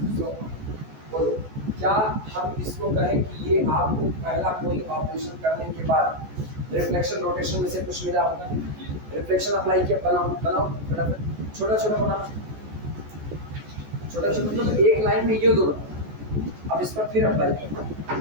बोलो क्या हम इसको कहें कि ये आपको पहला कोई ऑपरेशन करने के बाद रिफ्लेक्शन रोटेशन में से कुछ मिला होगा, रिफ्लेक्शन अप्लाई किया, बनाओ बनाओ फटाफट, छोटा छोटा बनाओ, छोटा छोटा, तो एक लाइन में ये दोनों। अब इस पर फिर अप्लाई करना,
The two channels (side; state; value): left; late; 14 ms